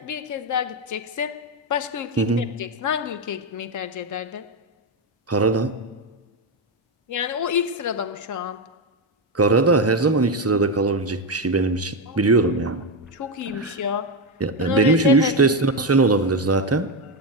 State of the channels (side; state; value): both; normal; correlation 0.09